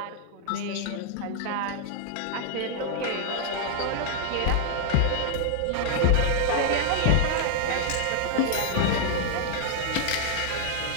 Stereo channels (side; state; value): both; different; correlation 0.00